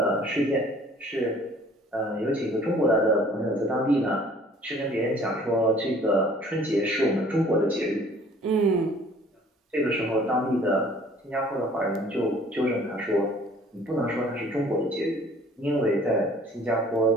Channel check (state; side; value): normal; both; correlation 0.53